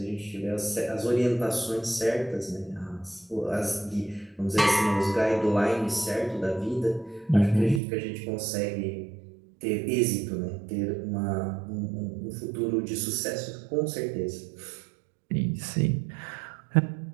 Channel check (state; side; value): drops out; left; at 7.8 s